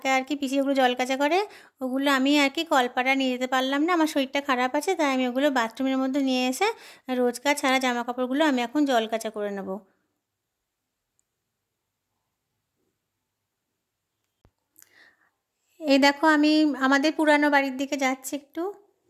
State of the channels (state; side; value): identical; both; correlation 1.00